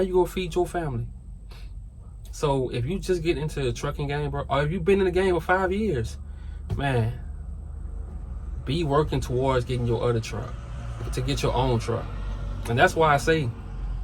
gonna feed your family? So if you just get into the trucking game, bro, or if you've been in the game for 5 years, man, be working towards getting your other truck, to get your own truck. And that's why I say,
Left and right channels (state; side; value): identical; both; correlation 1.00